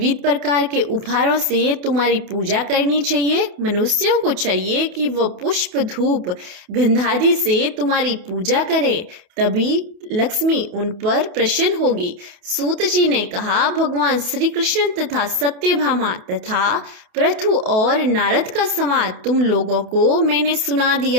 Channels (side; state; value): left; late; 28 ms